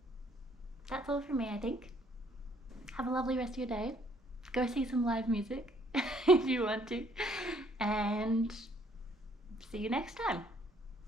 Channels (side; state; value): both; normal; correlation 0.64